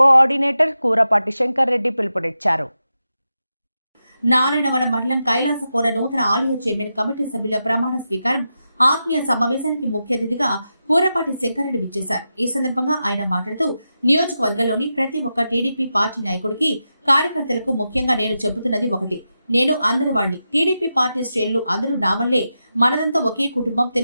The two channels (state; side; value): inverted; both; correlation -0.89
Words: Kurapati Shankar Reddy పిలుపునిచ్చారు. నారాయణవనం మండలం కైలాసపుర నూతన ఆలయ చైర్మన్ కమిటీ సభ్యుల ప్రమాణ స్వీకారం ఆత్మీయ సమావేశానికి ముఖ్య అతిథిగా కూరపాటి శంకర్రెడ్డి విచ్చేశారు. ఈ సందర్భంగా ఆయన మాట్లాడుతూ నియోజకవర్గంలోని ప్రతి ఒక్క టీడీపీ పార్టీ నాయకుడికి కార్యకర్తలకు ముఖ్యంగా నేను చెబుతున్నది ఒకటి, నేను అందరి వాణ్ణి, టీడీపీ పార్టీ శ్రేణులు అందరూ నా వల్లే, మనదంతా ఒకే కుటుంబం,